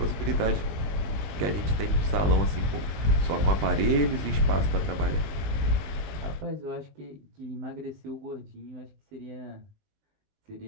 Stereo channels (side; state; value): left; late; 20 ms